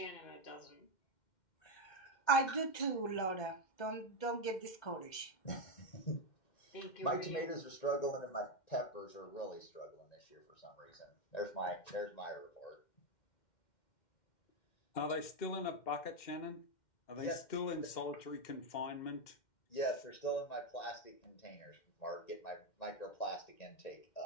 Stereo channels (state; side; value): late; right; 2.1 ms